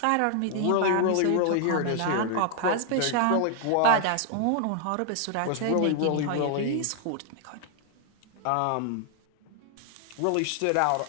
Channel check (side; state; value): both; different; correlation 0.00